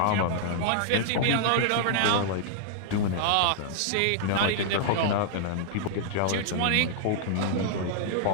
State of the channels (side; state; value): both; different; correlation -0.01